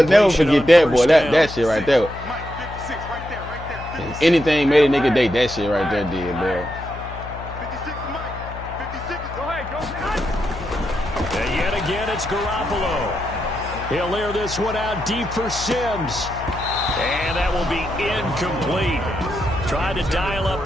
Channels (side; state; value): left; noise; hum, 11 dB below the sound